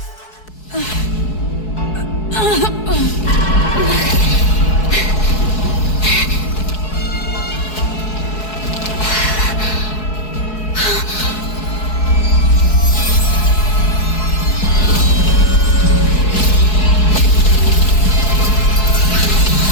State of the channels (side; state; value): right; late; 4.7 ms